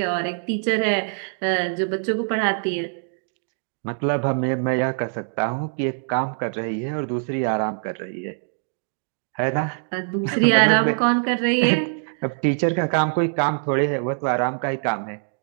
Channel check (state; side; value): silent; left; 63 dB below the other